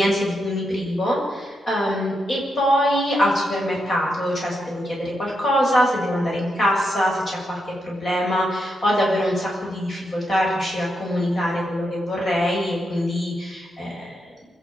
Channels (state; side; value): normal; both; correlation 0.83